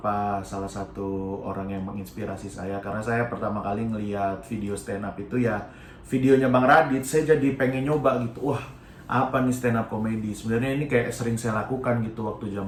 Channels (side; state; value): both; identical; correlation 1.00